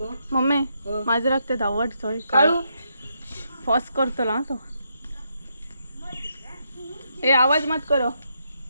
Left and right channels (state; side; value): inverted; both; correlation -0.79